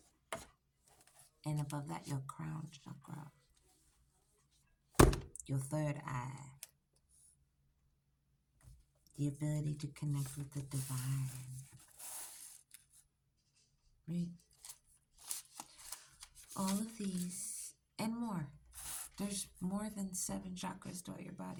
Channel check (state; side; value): identical; both; correlation 1.00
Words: And above that, your crown chakra. Your third eye. The ability to connect with the divine. Right? All of these and more. There's more than 7 chakras throughout your